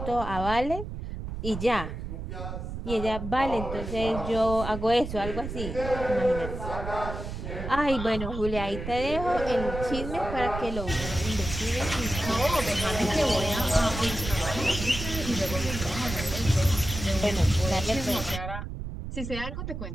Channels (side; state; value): right; noise; rumble, 7 dB below the sound